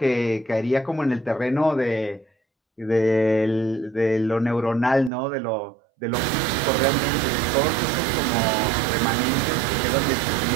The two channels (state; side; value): drops out; left; at 5.1 s